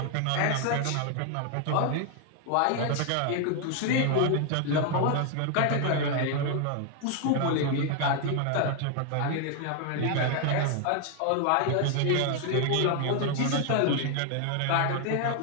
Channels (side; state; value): both; different; correlation 0.00